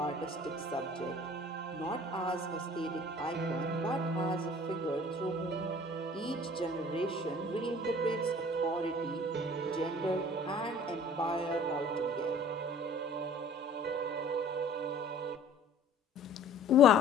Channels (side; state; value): both; normal; correlation 0.50